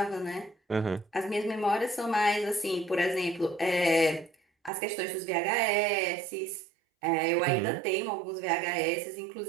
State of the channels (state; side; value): drops out; left; at 4.7 s